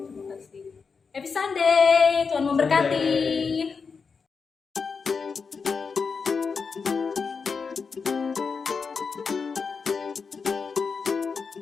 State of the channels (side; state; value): right; quieter; 5.3 dB